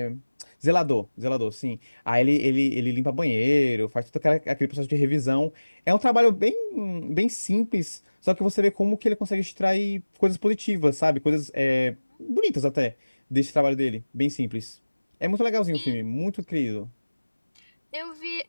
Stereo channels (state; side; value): inverted; both; correlation -1.00